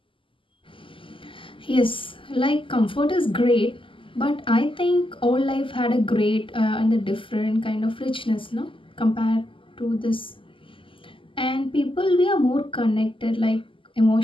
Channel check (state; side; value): late; right; 0.25 ms